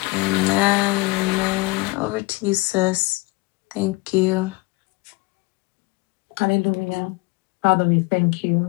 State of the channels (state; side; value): quieter; right; 24.6 dB